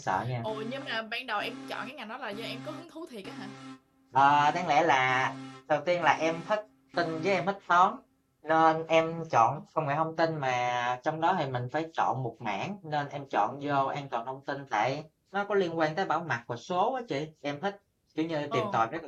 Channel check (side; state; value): both; identical; correlation 1.00